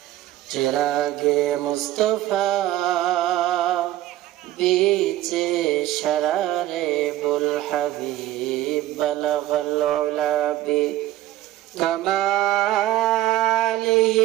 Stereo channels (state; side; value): quieter; left; 14.6 dB